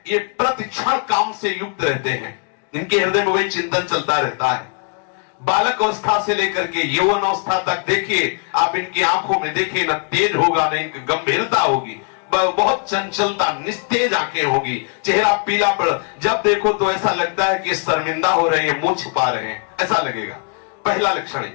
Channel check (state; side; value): quieter; right; 39.4 dB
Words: ये प्रतिक्षण काम से युक्त रहते हैं। इनके हृदय में वही चिंतन चलता रहता है। बालक अवस्था से लेकर के यौवन अवस्था तक देखिए आप, इनकी आंखों में देखिए, न तेज होगा न इनकी गंभीरता होगी, बहुत चंचलता, निस्तेज आंखें होगी, चेहरा पीला पड़, जब देखो तो ऐसा लगता है कि शर्मिंदा हो रहे हैं, मुंह छिपा रहे हैं, ऐसा लगेगा। पहला लक्षण है।